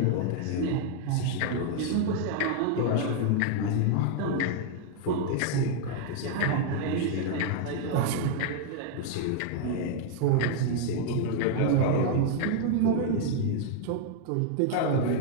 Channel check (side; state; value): both; different; correlation -0.01